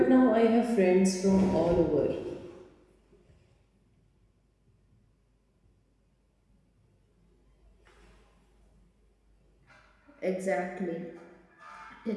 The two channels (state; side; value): identical; both; correlation 1.00